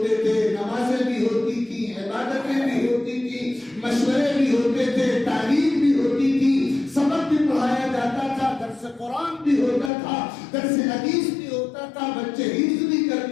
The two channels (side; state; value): right; drops out; at 9.9 s